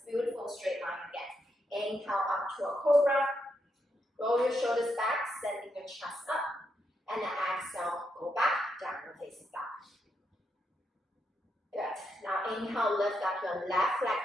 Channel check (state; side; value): normal; both; correlation 0.81